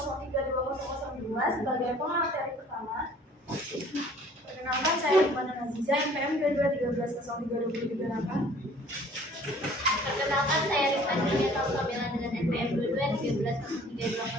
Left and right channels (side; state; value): both; normal; correlation 0.53